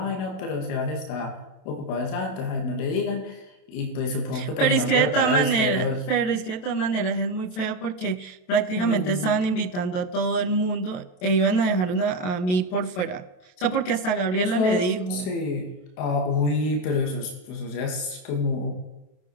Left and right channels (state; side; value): late; right; 27 ms